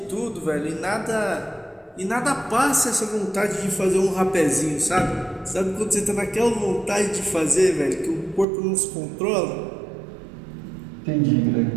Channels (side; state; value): left; drops out; at 8.5 s